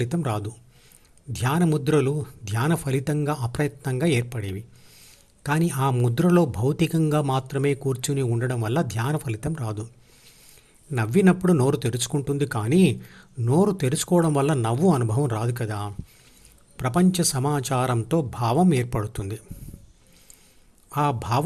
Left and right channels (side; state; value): both; identical; correlation 1.00